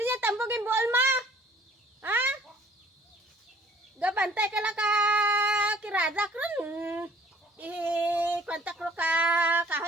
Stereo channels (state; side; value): normal; both; correlation 0.55